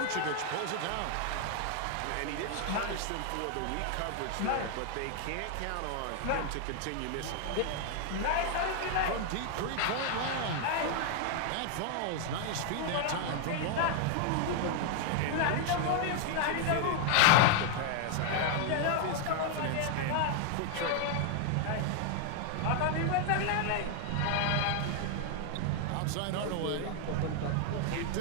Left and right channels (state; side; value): different; both; correlation 0.00